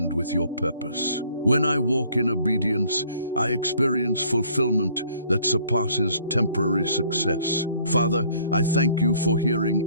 with your purpose. When I walk in obedience, I experience fulfillment that surpasses temporary success. Father, I thank you for hearing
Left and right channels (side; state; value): both; inverted; correlation -0.59